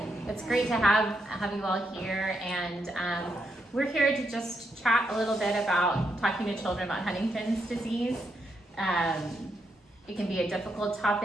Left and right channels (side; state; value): both; normal; correlation 0.80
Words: It's great to have you all here, and we're here to just chat a little bit about talking to children about Huntington's disease. It can be a difficult